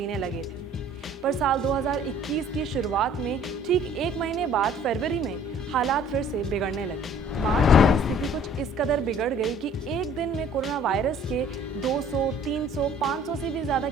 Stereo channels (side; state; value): both; normal; correlation 0.54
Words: लगे थे। पर साल 2021 की शुरुआत में ठीक एक महीने बाद फरवरी में हालात फिर से बिगड़ने लगे। मार्च में स्थिति कुछ इस कदर बिगड़ गई कि एक दिन में कोरोना वायरस के 200, 300, 500 से भी ज़्यादा